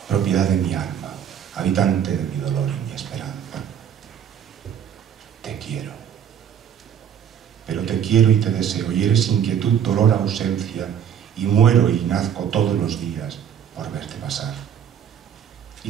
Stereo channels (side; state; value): left; quieter; 8.7 dB